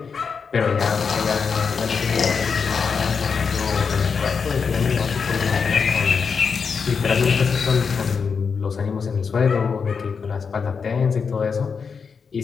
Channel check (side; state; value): right; quieter; 5.7 dB